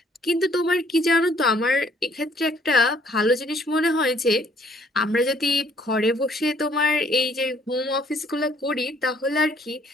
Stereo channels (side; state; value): both; normal; correlation 0.63